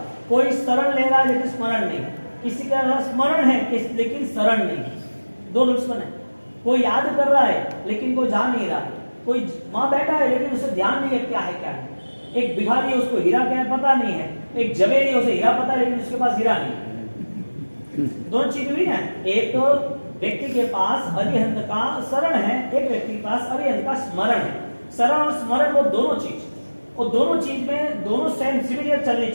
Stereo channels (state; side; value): inverted; both; correlation -1.00